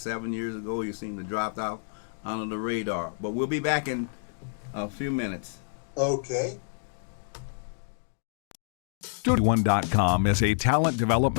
years ago. You seem to drop out under the radar. But we'll be back in a few minutes. Okay. Studio81.com is a talent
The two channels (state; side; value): silent; right; digital silence